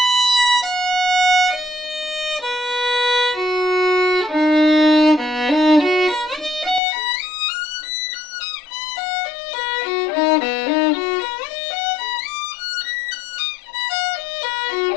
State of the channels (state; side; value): drops out; right; at 6.8 s